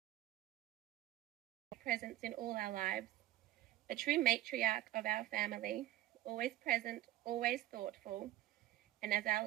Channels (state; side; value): quieter; left; 14.3 dB